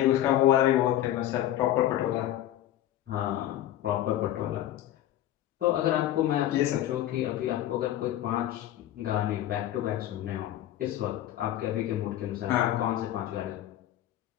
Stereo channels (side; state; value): right; quieter; 12.9 dB